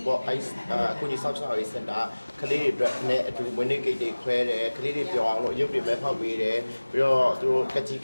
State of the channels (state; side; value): inverted; both; correlation -1.00